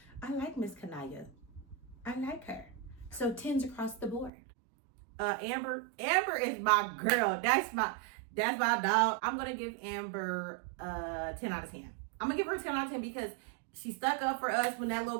I like Miss Kanaya. I like her. So 10s across the board. Amber is my girl. That's my dog. I'm gonna give Amber 10 out of 10. I'm gonna give her 10 out of 10 because she stuck up for us when that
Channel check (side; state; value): left; drops out; at 4.3 s